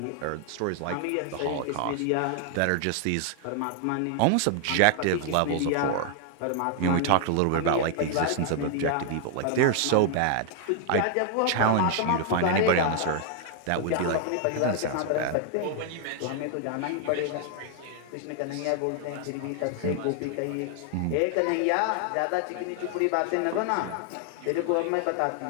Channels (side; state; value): both; different; correlation 0.00